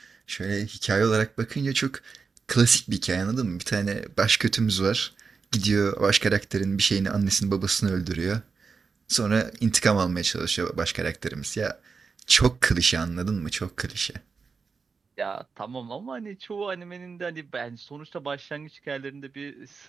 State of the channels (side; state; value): left; quieter; 5.0 dB